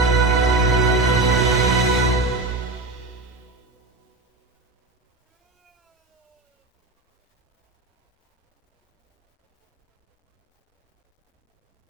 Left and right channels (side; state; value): left; quieter; 3.0 dB